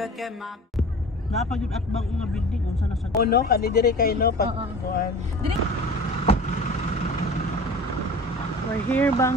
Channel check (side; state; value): both; normal; correlation 0.39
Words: Napag yung atbang nga building unsa na sa no kani dire kay no pag kuan. We're here,